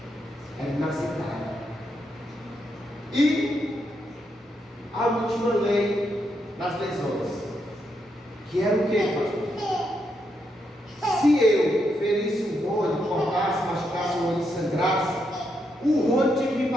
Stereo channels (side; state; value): both; normal; correlation 0.80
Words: Era inaceitável. E a última lei das lesões, que era o que, pastor? Se eu ferisse um Rony, cortasse, machucasse o Rony e sangrasse, o Rony tinha que me